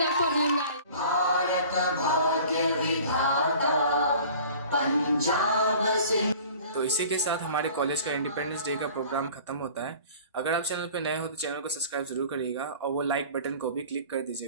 up for him, guys. Bharat भाग्य विधाता पंजाब सिंह। तो इसी के साथ हमारे कॉलेज का इंडिपेंडेंस डे का प्रोग्राम खत्म होता है। अगर आप चैनल पे नए हो तो चैनल को सब्सक्राइब जरूर करिएगा और वो लाइक बटन को भी क्लिक कर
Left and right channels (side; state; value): both; inverted; correlation -0.45